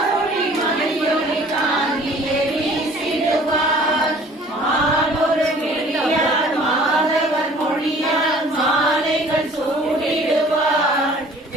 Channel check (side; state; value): both; normal; correlation 0.51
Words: மணியொளி காந்தியை வீசிடுவார் மானொரு கிளியார் மாதவர் மொழியார் மாலைகள் சூடிடுவார்